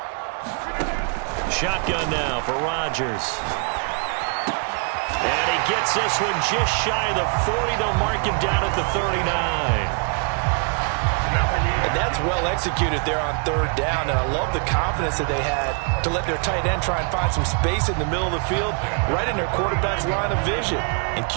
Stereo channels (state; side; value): quieter; left; 39.5 dB